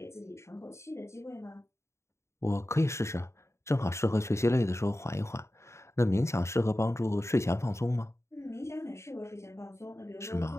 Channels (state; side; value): late; right; 0.14 ms